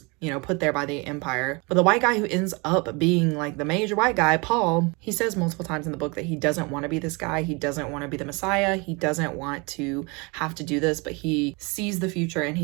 you know, put there by the Empire. But the white guy who ends up being like the major white guy, Paul, he says multiple times in the book that he doesn't want to be this guy. He doesn't want to be the Messiah. He doesn't want to have to do this, but he sees the future and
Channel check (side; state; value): left; quieter; 28.7 dB